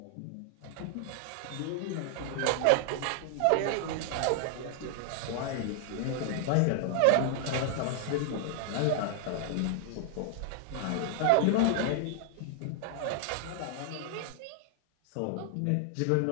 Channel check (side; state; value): both; different; correlation 0.00